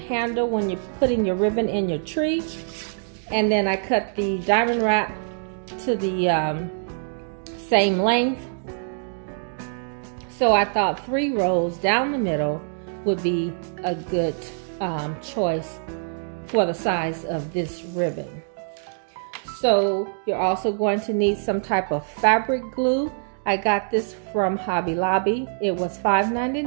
when you're putting your ribbon in your tree. And then I cut the diamond wrap to the same length. So I thought 3 rows down the middle would be a good choice for the size of this ribbon. So you're also going to need some type of fabric glue. I got this from Hobby Lobby. It was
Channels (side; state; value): left; silent; digital silence